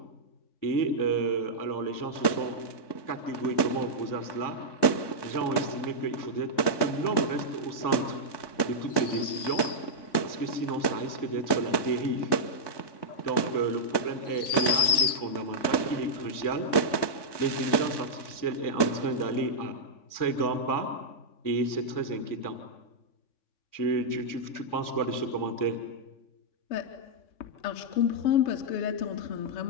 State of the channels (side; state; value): right; late; 3.6 ms